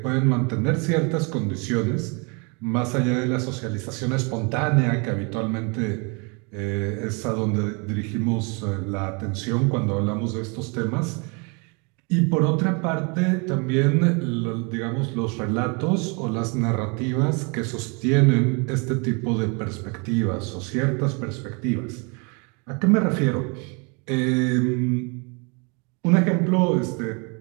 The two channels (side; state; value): left; quieter; 32.5 dB